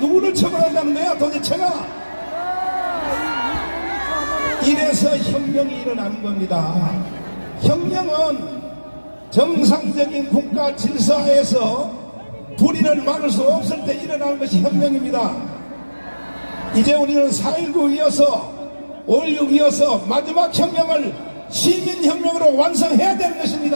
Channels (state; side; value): inverted; both; correlation -1.00